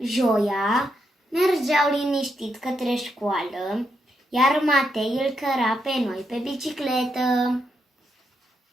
mergeau liniștit către școală, iar Matei îl căra pe noi pe bicicletă.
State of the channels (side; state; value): both; normal; correlation 0.81